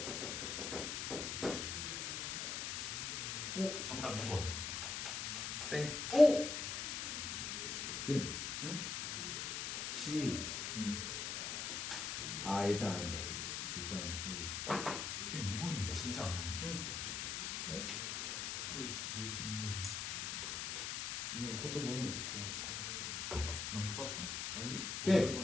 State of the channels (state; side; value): noise; left; hiss, 2 dB below the sound